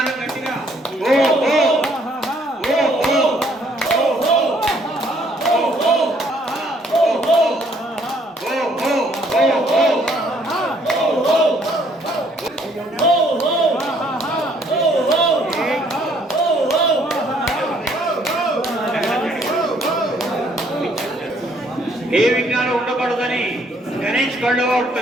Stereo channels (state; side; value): normal; both; correlation 0.65